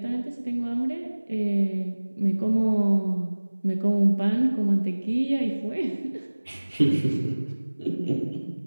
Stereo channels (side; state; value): both; inverted; correlation -1.00